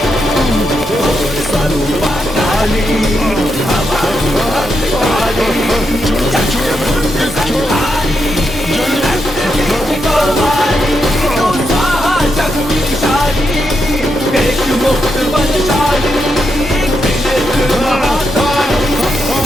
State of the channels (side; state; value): both; normal; correlation 0.83